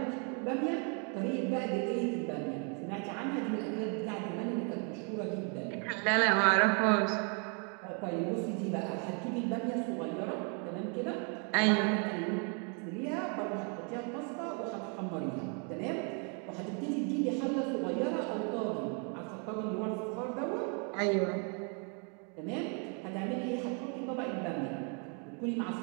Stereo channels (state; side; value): quieter; left; 38.0 dB